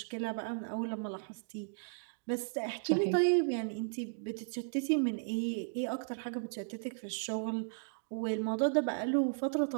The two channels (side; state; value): left; silent; digital silence